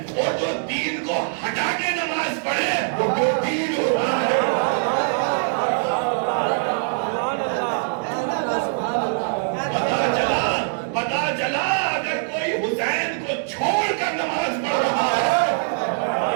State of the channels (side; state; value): left; silent; digital silence